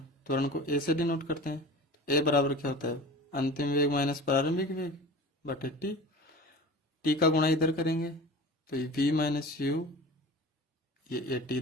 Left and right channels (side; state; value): both; normal; correlation 0.37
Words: त्वरण को ए से डिनोट करते हैं। ए बराबर क्या होता है? अंतिम वेग माइनस प्रारंभिक वेग बटे टी। टी का गुणा इधर करेंगे तो ये v माइनस यू, ये ए टी